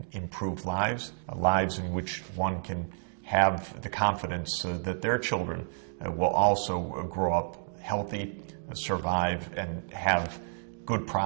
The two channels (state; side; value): silent; left; digital silence